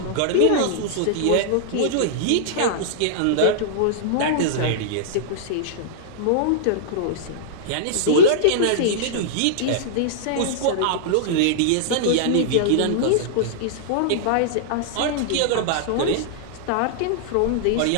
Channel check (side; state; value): both; different; correlation -0.02